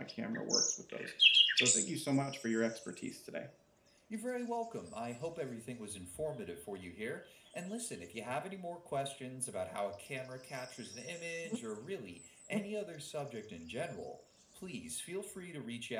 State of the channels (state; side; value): identical; both; correlation 1.00